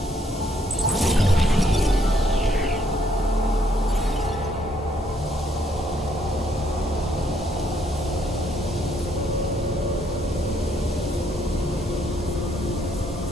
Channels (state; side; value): normal; both; correlation 0.70